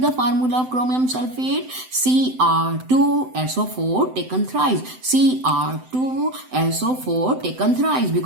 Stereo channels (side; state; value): left; late; 7.8 ms